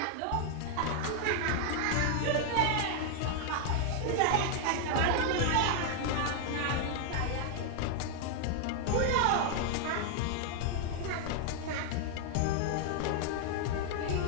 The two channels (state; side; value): different; both; correlation 0.00